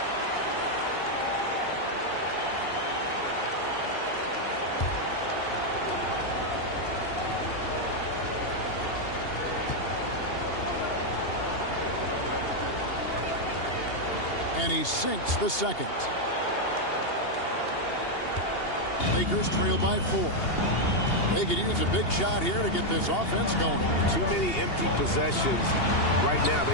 And he sinks the second. Lakers trail by 4. They could use a big shot here to get this offense going. Too many empty possessions. Right now,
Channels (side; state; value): right; late; 2.8 ms